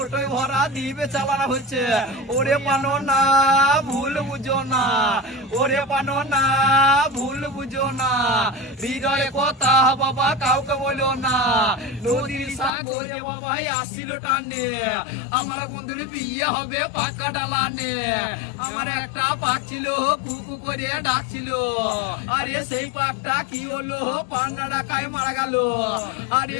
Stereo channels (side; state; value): right; drops out; at 12.7 s